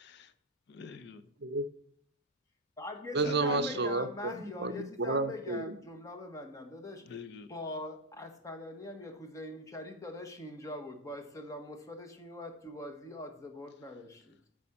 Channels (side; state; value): both; normal; correlation 0.01